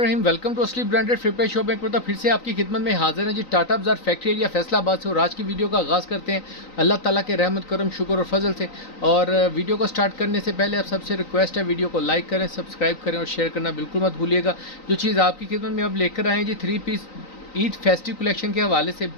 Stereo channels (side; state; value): right; late; 3.9 ms